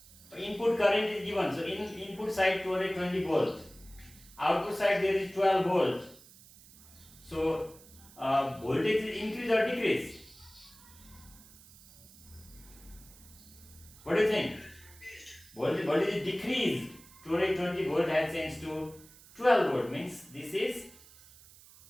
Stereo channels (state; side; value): noise; right; hiss, 22 dB below the sound